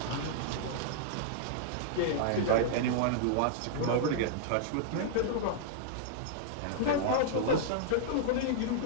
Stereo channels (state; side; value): different; both; correlation -0.01